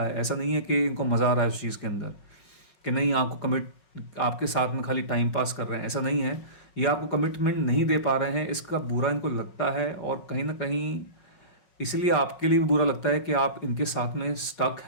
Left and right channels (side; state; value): right; late; 5.4 ms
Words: है। ऐसा नहीं है कि इनको मज़ा आ रहा है उस चीज़ के अंदर कि नहीं आपको कमिट, आपके साथ में खाली टाइम पास कर रहे हैं, ऐसा नहीं है। ये आपको कमिटमेंट नहीं दे पा रहे हैं, इसका बुरा इनको लगता है, और कहीं ना कहीं इसलिए आपके लिए भी बुरा लगता है कि आप इनके साथ में स्टक